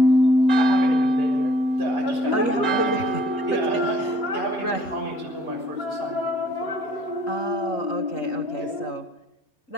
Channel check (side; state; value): right; late; 3.8 ms